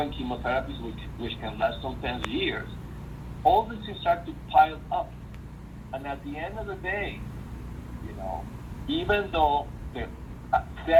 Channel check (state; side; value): identical; both; correlation 1.00